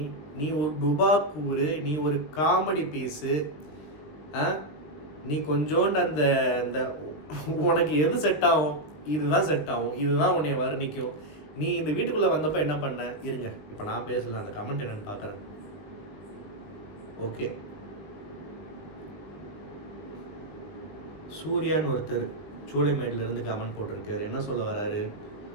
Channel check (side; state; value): right; late; 20 ms